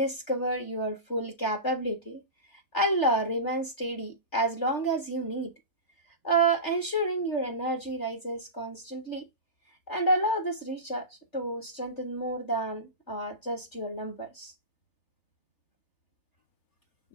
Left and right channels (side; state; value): right; late; 3.4 ms